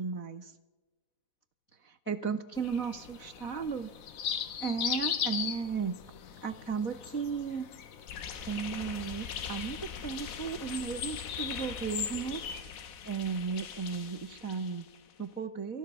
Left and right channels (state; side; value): late; right; 4.1 ms